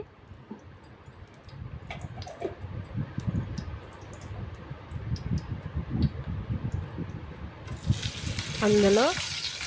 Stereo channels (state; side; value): identical; both; correlation 1.00